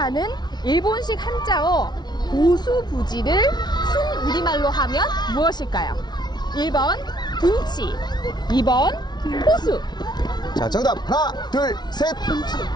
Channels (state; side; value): late; right; 0.20 ms